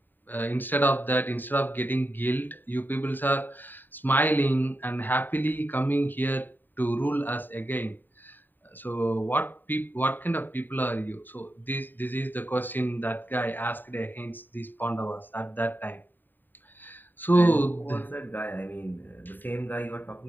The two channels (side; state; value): right; late; 0.091 ms